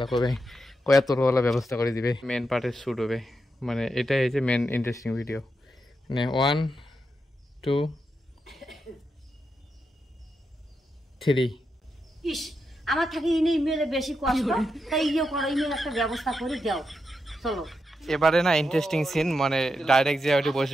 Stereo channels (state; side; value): normal; both; correlation 0.85